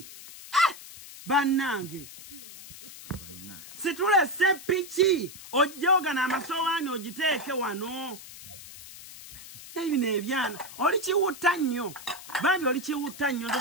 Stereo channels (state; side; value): noise; left; hiss, 15 dB below the sound